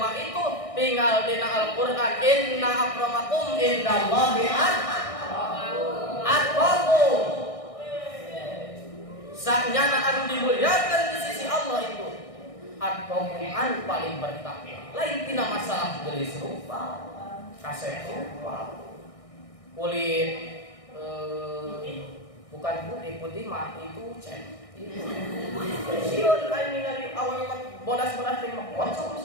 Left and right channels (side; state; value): right; late; 1.6 ms